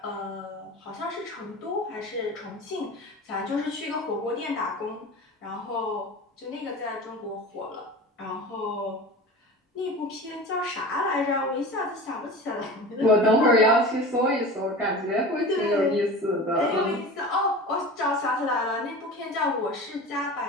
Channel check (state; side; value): normal; both; correlation 0.34